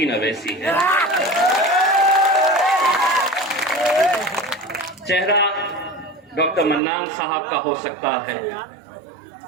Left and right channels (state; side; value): drops out; left; at 6.8 s